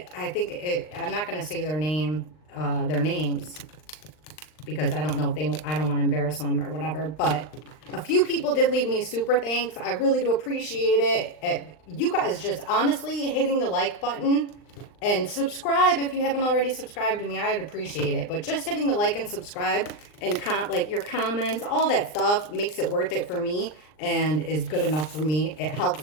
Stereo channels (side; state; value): right; late; 39 ms